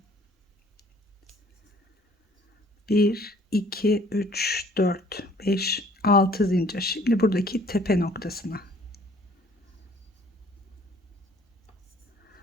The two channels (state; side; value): normal; both; correlation 0.56